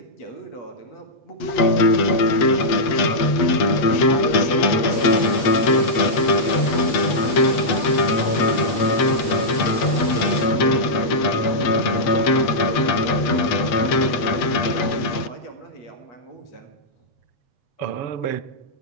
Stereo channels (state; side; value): late; right; 8.3 ms